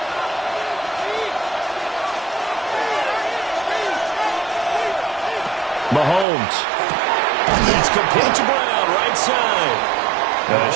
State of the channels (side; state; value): left; drops out; at 6.2 s